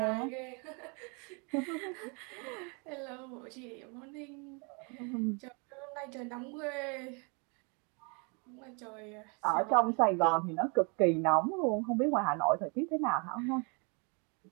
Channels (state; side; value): quieter; left; 33.6 dB